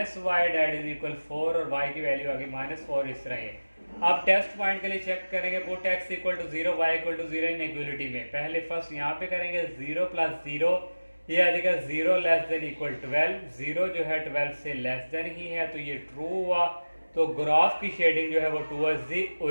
y that is equal 4 और y की वैल्यू आ गई -4, इस तरह ये। अब टेस्ट पॉइंट के लिए चेक करेंगे, put x equal to 0, y equal to 0 inequality में। पहले फर्स्ट यहाँ पे करेंगे 0 प्लस 0, ये आ जाएगा 0 लेस देन इक्वल 12, 0 जो है 12 से लेस देन ही है, तो ये ट्रू हुआ। तो ग्राफ की शेडिंग जो है वो टूवर्ड्स दी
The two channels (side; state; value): both; inverted; correlation -1.00